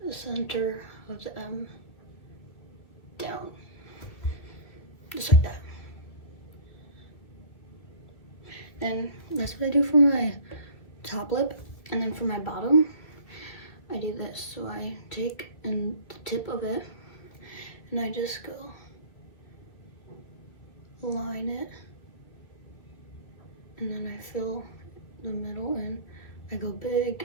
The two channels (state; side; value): late; right; 2.0 ms